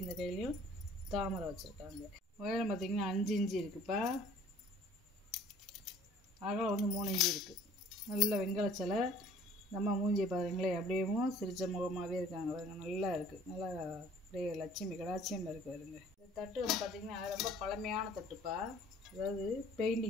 இந்த கையிலையும் தாமரை வச்சுருக்காங்க. உயரம் பார்த்திங்கன்னா 5 இன்ச்சு இருக்குப்பா. அகலம் வந்து 3 இன்ச்சு இருக்குது. நல்ல வெங்கல சிலை. நம்ம மூஞ்சியை பாருங்களேன், அப்படியேவும் சிரிச்ச முகமாகவே இருக்காங்க பாருங்க. நல்லா இருக்குது. நல்லா அப்படியே லட்சுமி கடாட்சியம் இருக்குது பாருங்க. இந்த தட்டு வந்து பார்த்திங்கன்னா ரொம்ப பழமையான தட்டுப்பா. அதாவது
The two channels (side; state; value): both; normal; correlation 0.53